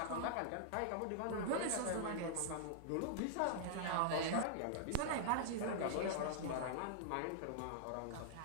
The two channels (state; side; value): different; both; correlation -0.01